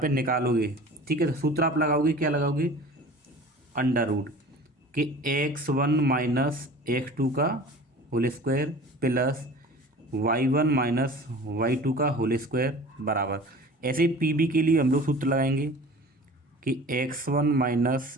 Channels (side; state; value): both; normal; correlation 0.42